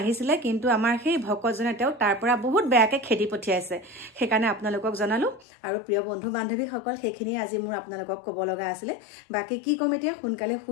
কিন্তু আমাৰ সেই ভকতজনে তেওঁ তাৰ পৰা বহুত বেয়াকে খেদি পঠিয়াইছে সেইকাৰণে আপোনালোকক জনালো আৰু প্ৰিয় বন্ধু বান্ধৱীসকল সেইখিনি আজি মোৰ আপোনালোকক ক'ব লগা আছিলে বাকি কি কম এতিয়া সোনকালে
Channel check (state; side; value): drops out; right; at 5.5 s